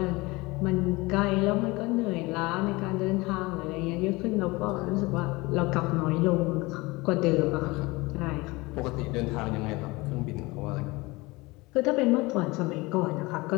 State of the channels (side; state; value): right; quieter; 23.0 dB